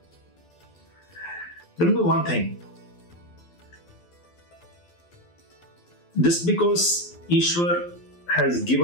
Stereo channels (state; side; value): late; right; 12 ms